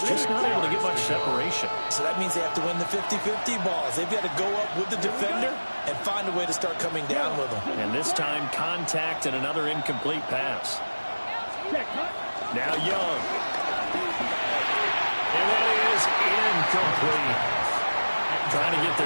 just not able to get much separation. So that means they have to win the 50-50 balls. They've got to go up with the defender and find a way to start coming down with them. And this time, contact and another incomplete pass. Now Young. And that is incomplete. Trying to get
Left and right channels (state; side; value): inverted; both; correlation -1.00